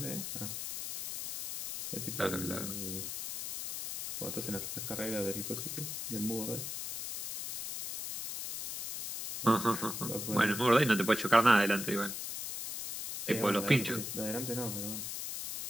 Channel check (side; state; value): left; noise; hiss, 6 dB below the sound